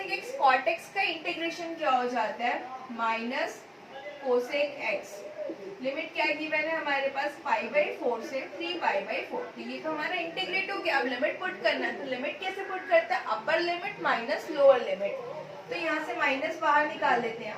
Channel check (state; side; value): identical; both; correlation 1.00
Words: x cot x का इंटीग्रेशन क्या हो जाता है, माइनस कोसेक x। लिमिट क्या गिवन है हमारे पास, पाई बाई 4 से 3 पाई बाई 4। तो ये तो हमारा इंटीग्रेट हो गया। अब लिमिट पुट करना है, तो लिमिट कैसे पुट करते हैं, upper limit minus lower limit. तो यहाँ से माइनस बाहर निकाल लेते हैं।